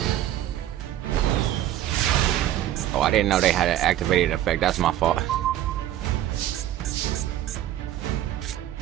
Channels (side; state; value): left; quieter; 12.7 dB